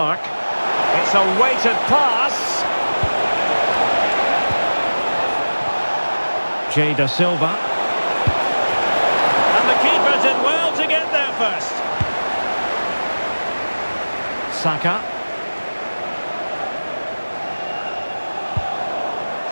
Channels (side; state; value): both; inverted; correlation -1.00